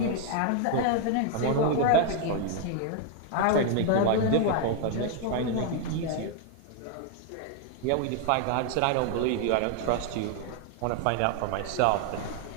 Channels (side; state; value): both; different; correlation 0.00